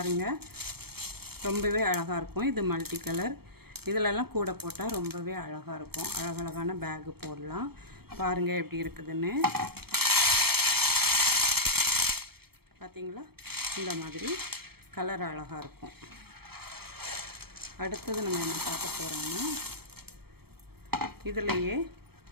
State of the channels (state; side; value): late; left; 0.96 ms